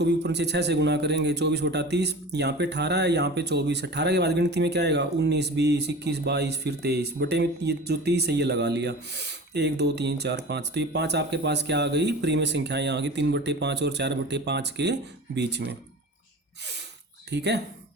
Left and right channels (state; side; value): normal; both; correlation 0.36